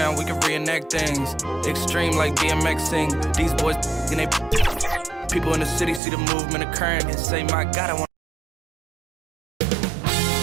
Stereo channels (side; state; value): left; drops out; at 6.0 s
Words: we can reenact things. Extreme like BMXing. These boys and they people in the city see the movement occurring and say, my God, I want.